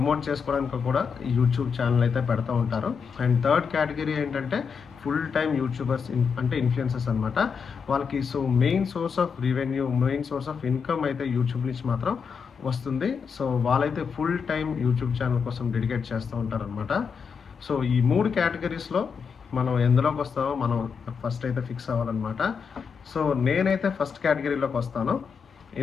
చేసుకోవడానికి కూడా యూట్యూబ్ ఛానల్ అయితే పెడతా ఉంటారు. అండ్ థర్డ్ కేటగిరీ ఏంటంటే ఫుల్ టైమ్ యూట్యూబర్స్, అంటే ఇన్ఫ్లుయెన్సర్స్ అనమాట. వాళ్ళకి so main source of revenue, main source of income అయితే యూట్యూబ్ నుంచి మాత్రం వస్తుంది. సో వాళ్ళైతే ఫుల్ టైమ్ యూట్యూబ్ ఛానల్ కోసం డెడికేట్ చేస్తూ ఉంటారనమాట. సో ఈ 3 కేటగిరీస్లో మనం ఎందులోకి వస్తామో మనం ఫస్ట్ అయితే ఫిక్స్ అవ్వాలన్నమాట. సో నేనైతే ఫస్ట్ కేటగిరీలోకి వస్తాను,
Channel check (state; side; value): quieter; right; 6.1 dB